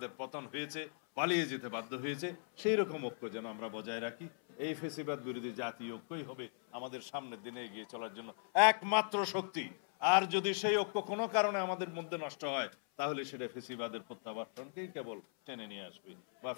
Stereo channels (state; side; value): silent; right; 52 dB below the other